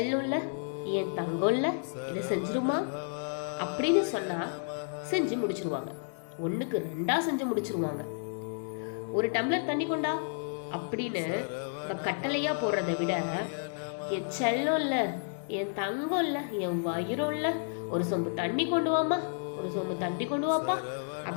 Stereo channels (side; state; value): right; silent; digital silence